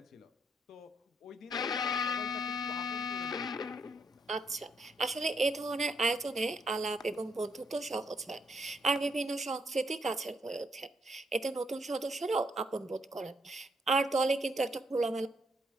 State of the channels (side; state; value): both; normal; correlation 0.75